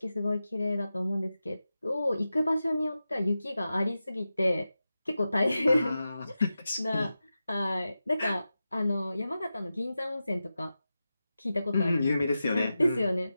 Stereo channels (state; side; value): inverted; both; correlation -0.92